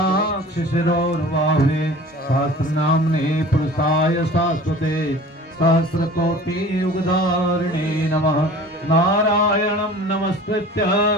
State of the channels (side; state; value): both; normal; correlation 0.43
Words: सहस्रनाम्ने पुरुषाय शाश्वते सहस्रकोटियुगधारिणे नमः। नारायणं नमस्कृत्य